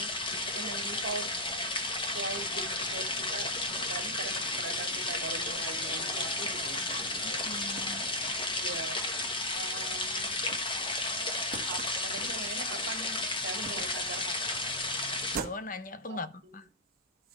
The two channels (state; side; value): normal; both; correlation -0.06